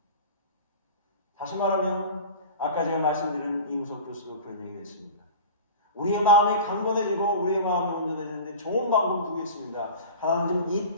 다시 말하면 아까 제가 말씀드린 이무석 교수도 그런 얘기를 했습니다. 우리의 마음이 강건해지고 우리의 마음이 온전해지는데 좋은 방법 두 개 있습니다. 하나는 좀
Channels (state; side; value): inverted; both; correlation -0.35